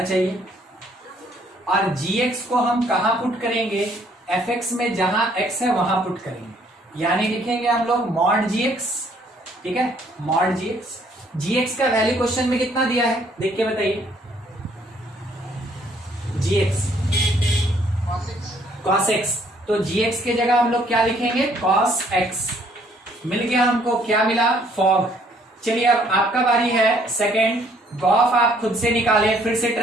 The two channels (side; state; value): both; normal; correlation 0.64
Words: चाहिए, और जी एक्स को हम कहां पुट करेंगे? एफ एक्स में, जहां एक्स है वहां पुट करेंगे, यानी लिखेंगे हम लोग मॉड जी एक्स, ठीक है, मॉड जी एक्स। जी एक्स का वैल्यू क्वेश्चन में कितना दिया है देख के बताइए? जी एक्स कॉस एक्स, तो जी एक्स के जगह हम लोग क्या लिखेंगे? Cos x. मिल गया हमको, क्या मिला? फॉग। चलिए अब आपका बारी है सेकंड। गॉफ आप खुद से निकालें, फिर से